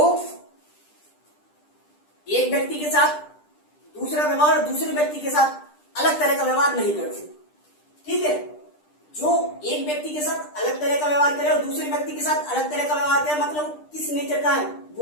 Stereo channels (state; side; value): late; right; 10 ms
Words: एक व्यक्ति के साथ दूसरा व्यवहार और दूसरे व्यक्ति के साथ अलग तरह का व्यवहार नहीं करते, ठीक है। जो एक व्यक्ति के साथ अलग तरह का व्यवहार करे और दूसरे व्यक्ति के साथ अलग तरह का व्यवहार करे, मतलब किस नेचर का है?